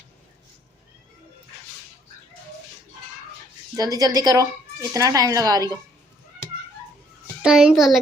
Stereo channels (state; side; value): normal; both; correlation 0.64